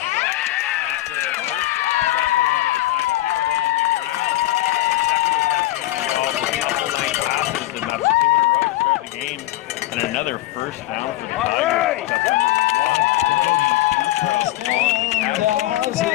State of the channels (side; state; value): right; quieter; 16.1 dB